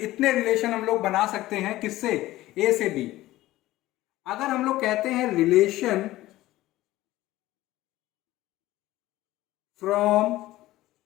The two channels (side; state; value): right; quieter; 16.5 dB